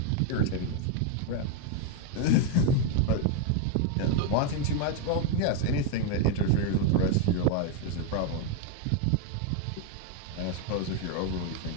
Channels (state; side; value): different; both; correlation 0.01